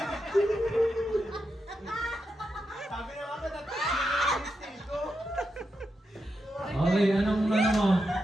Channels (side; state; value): both; normal; correlation 0.86